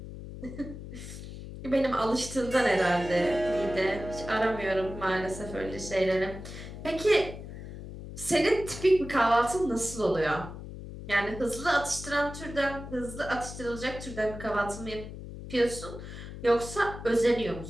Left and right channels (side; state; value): left; noise; hum, 11 dB below the sound